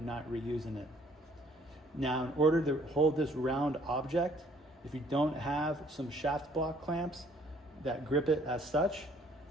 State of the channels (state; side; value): normal; both; correlation 0.60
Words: not reusing it. Now, in order to hold this round object, if you don't have some shaft block clamps that grip it as such,